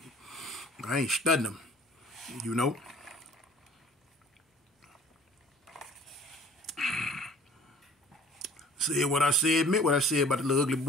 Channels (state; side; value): normal; both; correlation 0.50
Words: I ain't studying them, Said what I said, meant what I said about the little ugly